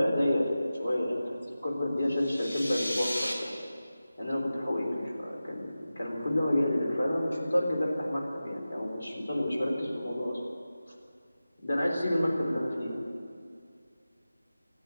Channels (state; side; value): inverted; both; correlation -0.95